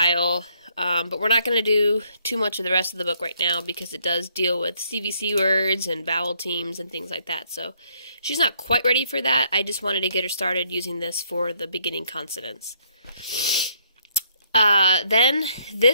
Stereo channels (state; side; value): inverted; both; correlation -0.69